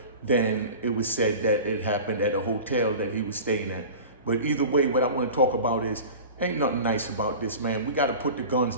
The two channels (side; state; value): both; inverted; correlation -0.36